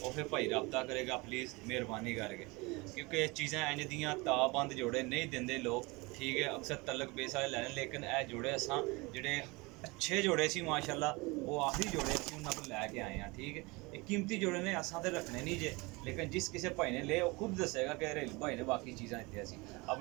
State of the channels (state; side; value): quieter; left; 25.1 dB